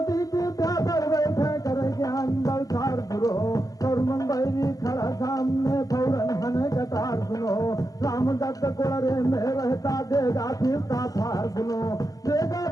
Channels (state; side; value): late; right; 0.17 ms